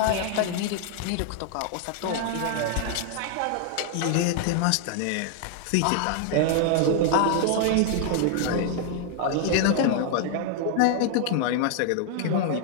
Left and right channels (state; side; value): different; both; correlation 0.00